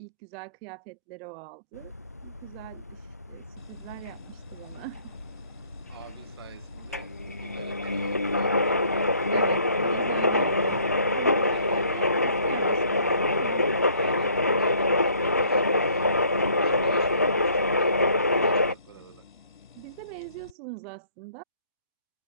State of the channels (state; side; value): inverted; both; correlation -0.59